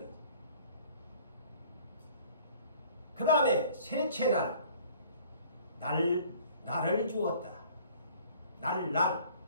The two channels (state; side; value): inverted; both; correlation -0.53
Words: 그 다음에 셋째 날을 주었다. 날.